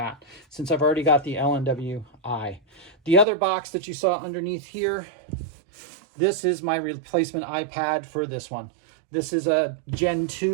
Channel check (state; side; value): drops out; left; at 3.2 s